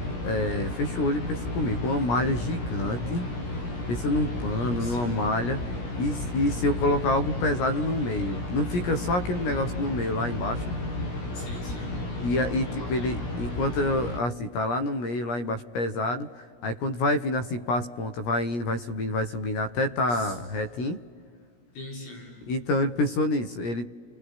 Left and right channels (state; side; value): late; right; 17 ms